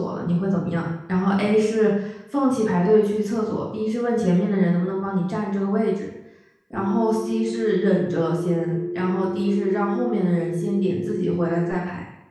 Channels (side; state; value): both; identical; correlation 1.00